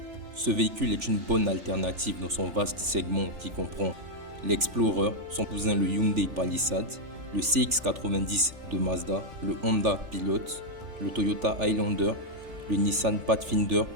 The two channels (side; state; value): left; late; 3.4 ms